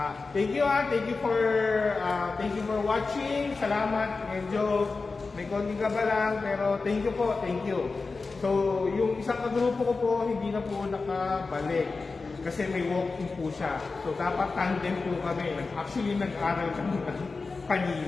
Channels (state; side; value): quieter; right; 4.1 dB